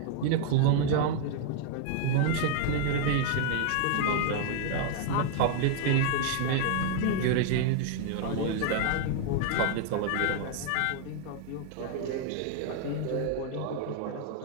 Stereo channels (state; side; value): different; both; correlation 0.00